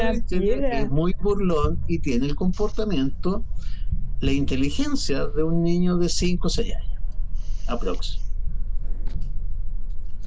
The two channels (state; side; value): identical; both; correlation 1.00